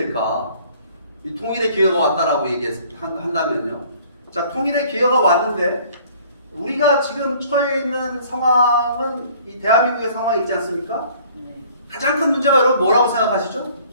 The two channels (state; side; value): inverted; both; correlation -0.55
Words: 이 통일의 기회가 왔다라고 한다면요. 자, 통일의 기회가 왔는데 우리가 지금 처해 있는 상황은 이 대한민국의 상황이 있지 않습니까? 가장 큰 문제가 여러분 뭐라고 생각하시죠?